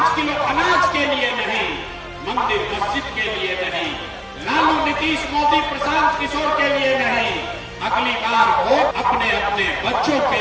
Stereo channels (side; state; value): both; identical; correlation 1.00